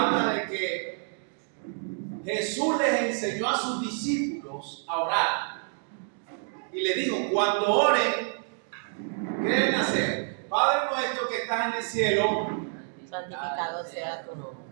de que Jesús les enseñó a sus discípulos a orar. Y le dijo, cuando oren, ¿qué deben hacer? Padre nuestro que estás en el cielo, santificado sea tu nombre.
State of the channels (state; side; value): silent; left; 59 dB below the other